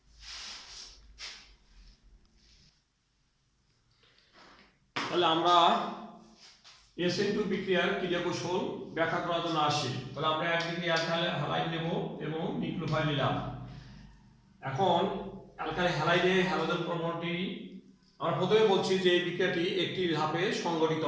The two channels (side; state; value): both; identical; correlation 1.00